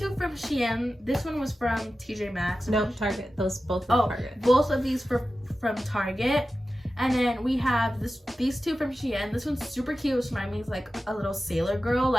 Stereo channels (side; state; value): both; normal; correlation 0.94